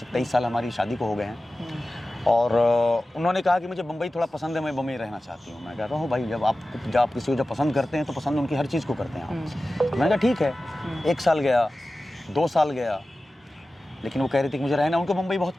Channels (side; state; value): both; normal; correlation 0.95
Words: साल हमारी शादी को हो गए हैं। और उन्होंने कहा कि मुझे बम्बई थोड़ा पसंद है, मैं बम्बई रहना चाहती हूँ। मैं कह रहा हूँ भाई जब आप किसी को जब पसंद करते हैं तो पसंद उनकी हर चीज़ को करते हैं आप। मैंने कहा ठीक है। 1 साल गया, 2 साल गया, लेकिन वो कह रही थी कि मुझे रहना, उनको मुंबई बहुत